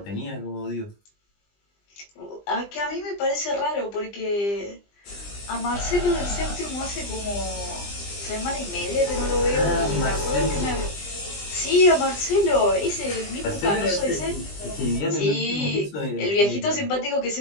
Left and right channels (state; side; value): late; right; 20 ms